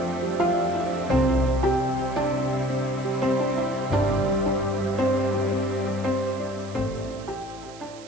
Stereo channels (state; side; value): noise; right; hiss, 20 dB below the sound